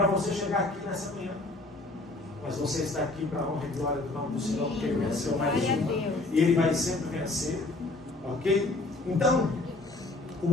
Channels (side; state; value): right; quieter; 3.0 dB